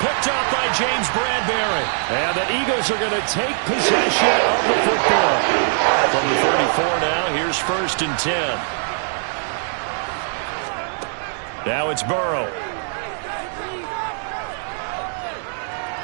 Picked up by James Bradbury. And the Eagles are going to take possession of the football. From the 34 now, here's 1st and 10. Now it's Burrow.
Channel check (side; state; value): left; silent; 65 dB below the other